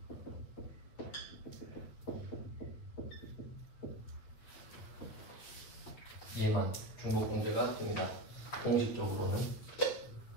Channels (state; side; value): late; right; 8.9 ms